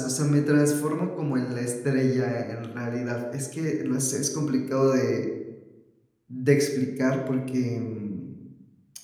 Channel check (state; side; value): identical; both; correlation 1.00